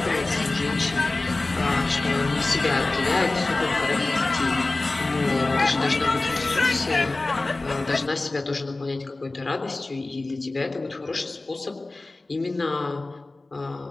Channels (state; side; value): quieter; right; 3.1 dB